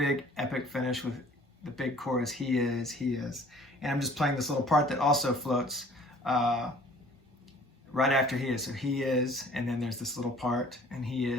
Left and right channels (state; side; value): normal; both; correlation 0.52